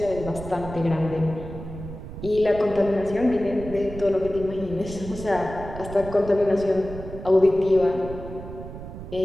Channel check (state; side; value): noise; right; rumble, 11 dB below the sound